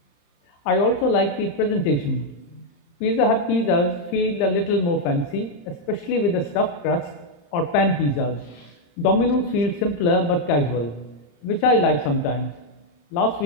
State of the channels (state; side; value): late; right; 35 ms